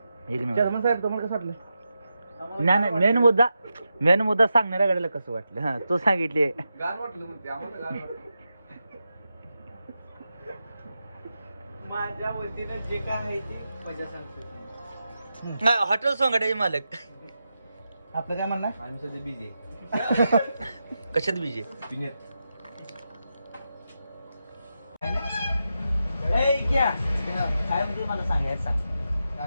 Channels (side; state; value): both; inverted; correlation -0.88